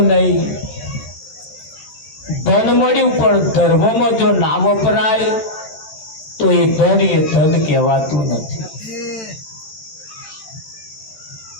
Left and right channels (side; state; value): right; late; 13 ms